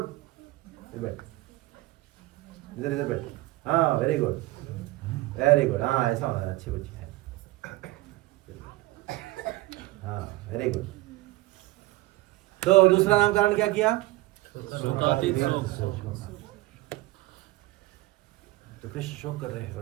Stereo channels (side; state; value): left; quieter; 19.3 dB